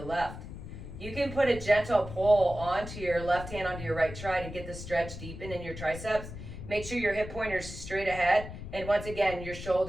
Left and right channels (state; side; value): noise; left; rumble, 10 dB below the sound